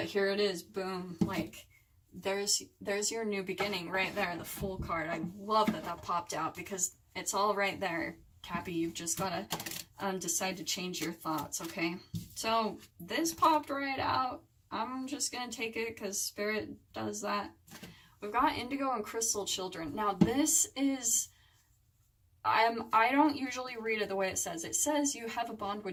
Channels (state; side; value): identical; both; correlation 1.00